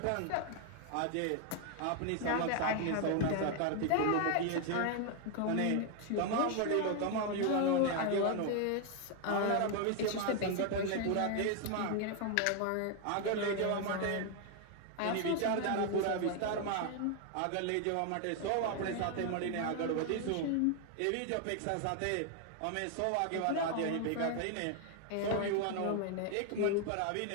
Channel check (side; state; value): both; different; correlation 0.01